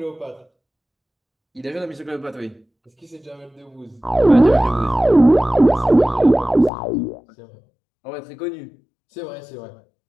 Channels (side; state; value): right; drops out; at 6.7 s